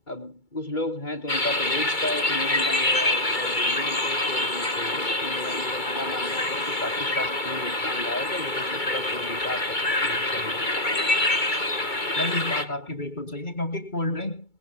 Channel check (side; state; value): right; late; 2.3 ms